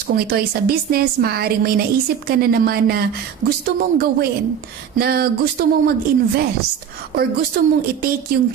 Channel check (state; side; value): quieter; left; 8.3 dB